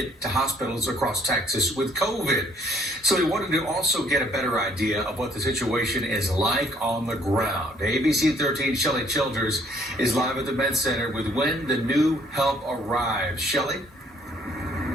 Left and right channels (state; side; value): normal; both; correlation 0.63